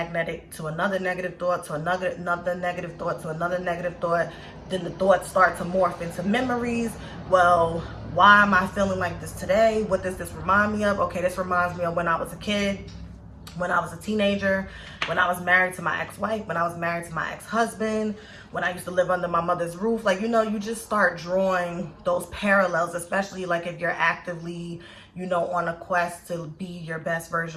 to another negative thought, to another negative thought, to another negative thought. Then the thoughts start to morph into memories. Well, why am I feeling like this today? What does this remind me of? Okay, this reminds me of when I was a kid, when I was a teenager, when I was married to my ex-wife, when I was married to my ex-husband, when I used to live under my mother's roof. Like, you know, you just start drawing those parallels, especially like if you're actively, you know, on a quest to be your best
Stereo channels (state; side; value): identical; both; correlation 1.00